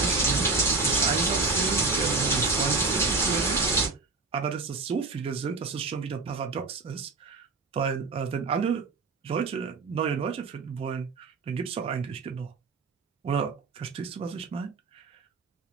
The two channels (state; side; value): quieter; left; 4.0 dB